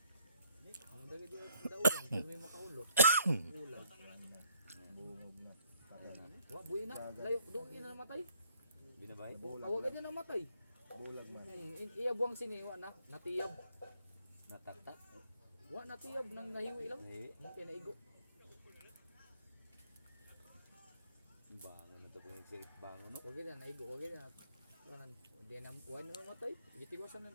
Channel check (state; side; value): inverted; both; correlation -0.65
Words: Ano dagay di daugan, kung may makaulo. Ulan. Bungog na. Patay na. Wa buhi na. Layo dugi na namatay. Binabay? O, awag na namatay. Bulag man. Iyabuang siniwa na, natiyab. Nataktak? Wa natiyab nang nahiwi lang. Eh, Okay, naigo. bangon ito kung nagsirit bangon no? Wag na naigo, wag na. Kanan, hindi na wa na namatay. Gitiwasan na